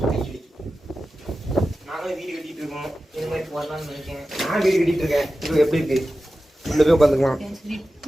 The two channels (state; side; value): normal; both; correlation 0.94